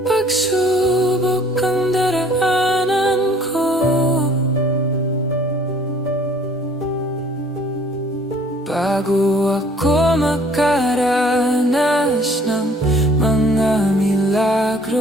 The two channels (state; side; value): normal; both; correlation 0.55